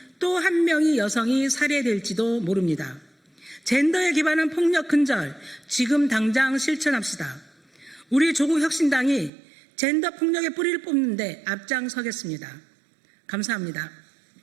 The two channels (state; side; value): drops out; left; at 9.3 s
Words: 또 한 명의 여성이 살해될지도 모릅니다. 젠더에 기반한 폭력 근절, 지금 당장 실천합시다. 우리 조국혁신당이 젠더 폭력의 뿌리를 뽑는 데 앞장서겠습니다. 감사합니다.